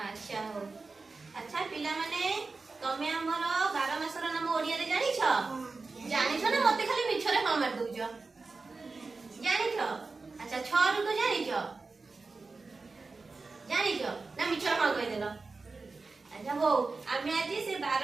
ଆଚ୍ଛା ହଉ। ଆଚ୍ଛା ପିଲାମାନେ ତମେ ଆମର 12 ମାସର ନାମ ଓଡ଼ିଆରେ ଜାଣିଛ? ଜାଣିଛ ନା ମତେ ଖାଲି ମିଛରେ ହଁ ମାରି ଦଉଛ? ଜାଣିଛ? ଆଚ୍ଛା 6 ଋତୁ ଜାଣିଛ? ଜାଣିଛ ନା ମିଛରେ ହଁ କହିଦେଲ? ଆଚ୍ଛା ହଉ ଆମେ ଆଜି ସେ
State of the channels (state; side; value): quieter; left; 4.0 dB